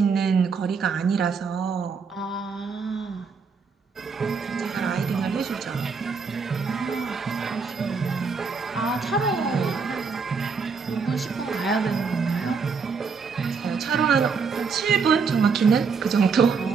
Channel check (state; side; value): quieter; left; 5.3 dB